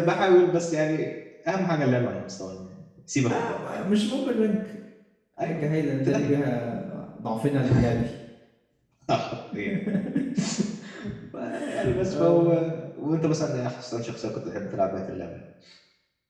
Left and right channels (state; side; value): identical; both; correlation 1.00